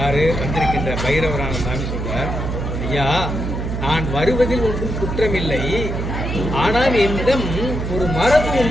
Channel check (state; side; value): noise; right; hum, 3 dB below the sound